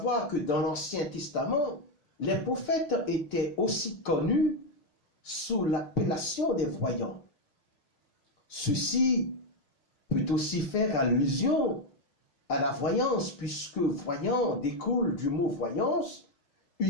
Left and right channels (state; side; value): late; right; 6.5 ms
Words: que dans l'Ancien Testament, les prophètes étaient aussi connus sous l'appellation des voyants. Ceci peut aussi faire allusion à la voyance, puisque voyant découle du mot voyance,